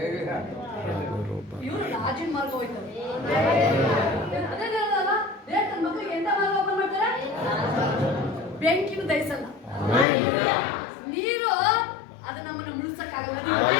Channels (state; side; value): drops out; right; at 10.1 s